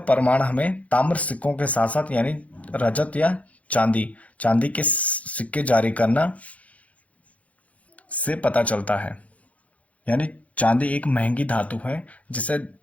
हमें ताम्र सिक्कों के साथ साथ यानी रजत या चांदी चांदी के सिक्के जारी करना से पता चलता है। यानी चांदी एक महंगी धातु है जिसे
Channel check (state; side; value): late; right; 0.067 ms